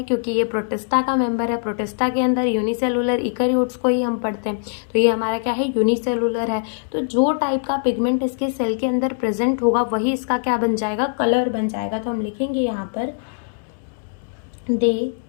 क्योंकि ये प्रोटिस्टा का मेंबर है। प्रोटिस्टा के अंदर यूनिसेलुलर ईकैरियोट्स को ही हम पढ़ते हैं, तो ये हमारा क्या है, यूनिसेलुलर है। तो जो टाइप का पिगमेंट इसके सेल के अंदर प्रेजेंट होगा वही इसका क्या बन जाएगा, कलर बन जाएगा। तो हम लिखेंगे यहाँ पर they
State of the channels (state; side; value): silent; right; 64 dB below the other